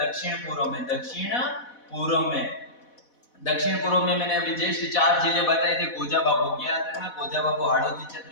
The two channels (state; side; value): late; right; 4.1 ms